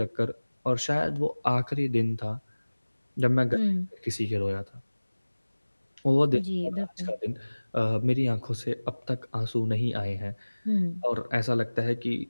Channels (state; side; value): inverted; both; correlation -1.00